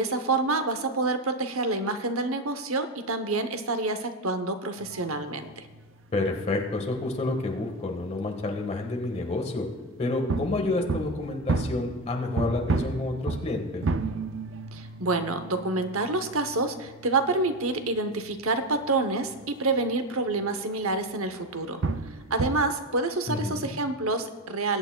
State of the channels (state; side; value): normal; both; correlation 0.17